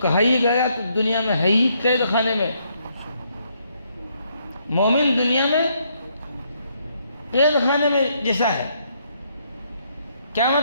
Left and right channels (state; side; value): inverted; both; correlation -0.72